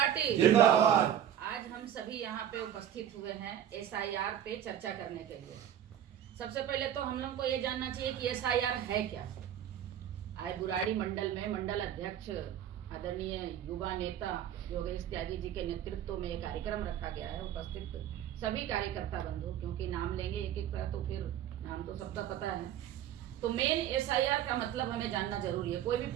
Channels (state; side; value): quieter; left; 10.5 dB